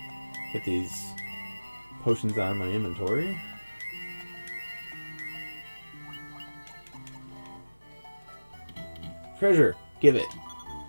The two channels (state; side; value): inverted; both; correlation -1.00